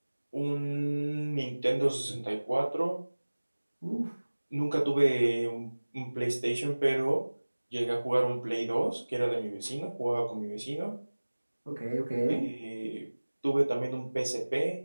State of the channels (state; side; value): inverted; both; correlation -1.00